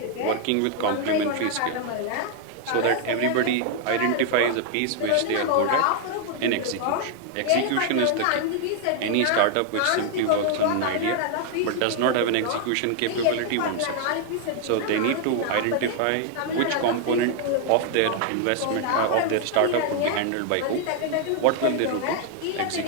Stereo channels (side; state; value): both; different; correlation 0.00